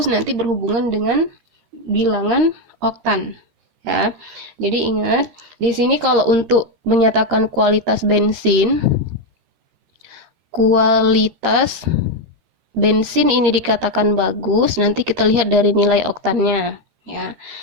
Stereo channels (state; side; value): late; left; 13 ms